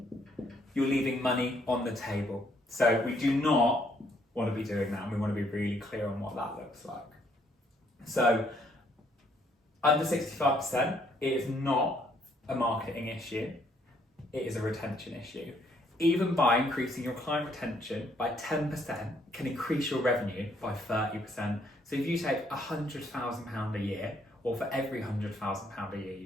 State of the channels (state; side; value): normal; both; correlation 0.68